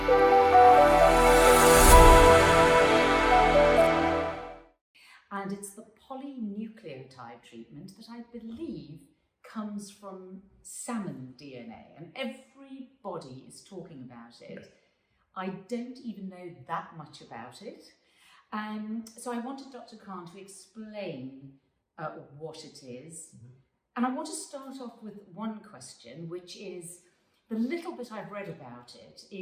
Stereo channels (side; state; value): both; identical; correlation 1.00